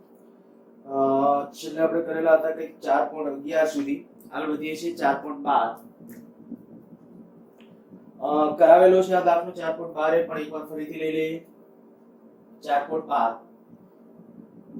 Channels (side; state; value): both; identical; correlation 1.00